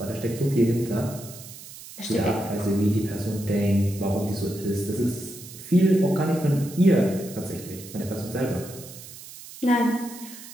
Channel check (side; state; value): right; noise; hiss, 15 dB below the sound